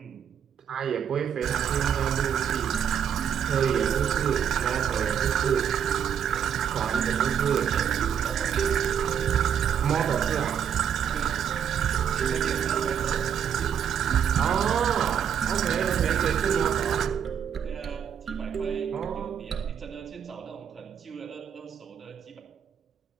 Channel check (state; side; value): quieter; left; 8.4 dB